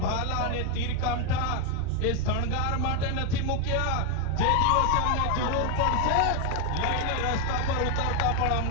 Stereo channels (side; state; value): both; different; correlation 0.01